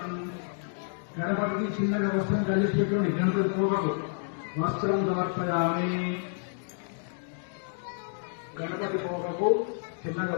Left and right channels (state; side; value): silent; right; digital silence